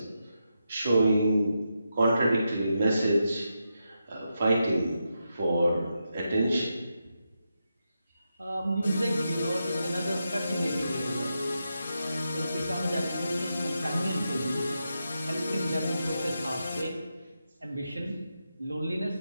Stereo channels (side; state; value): both; inverted; correlation -0.86